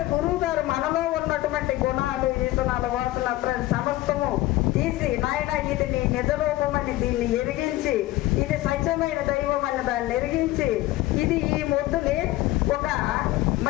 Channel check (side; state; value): right; quieter; 16.8 dB